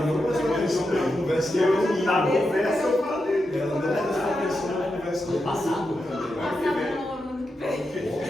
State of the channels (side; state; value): both; normal; correlation 0.87